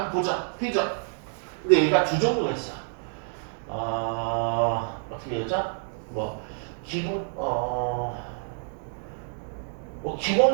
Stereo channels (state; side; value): silent; left; 60 dB below the other